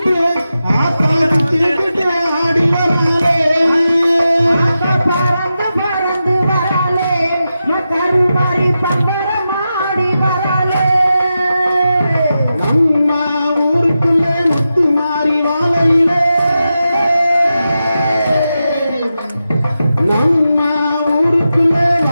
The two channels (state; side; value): inverted; both; correlation -0.90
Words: ஆடிக்கிட்டு ஆடி வராளே பறந்து பறந்து வராளே கருமாறி பம்பரம் ஆடி வராளே நம்ம ஊருக்குள்ள முத்து மாறி வாழையிலே நம்ம ஊருக்குள்ள